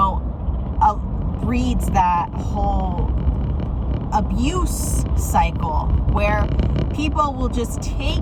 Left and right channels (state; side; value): identical; both; correlation 1.00